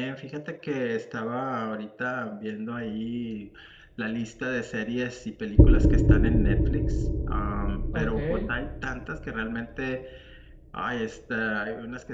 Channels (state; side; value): identical; both; correlation 1.00